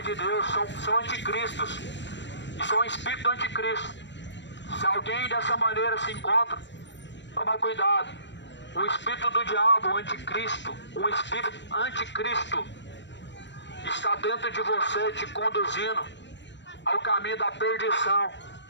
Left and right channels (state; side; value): late; right; 0.53 ms